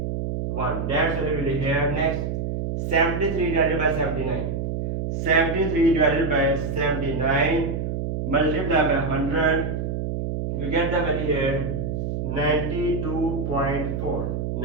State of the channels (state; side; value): noise; right; hum, 2 dB below the sound